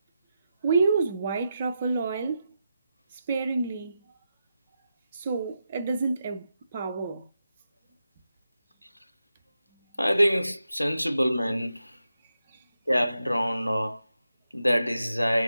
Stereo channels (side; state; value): both; inverted; correlation -0.88